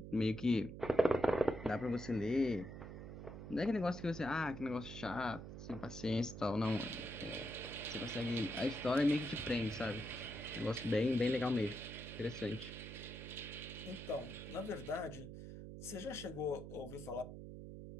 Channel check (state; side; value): noise; right; hum, 10 dB below the sound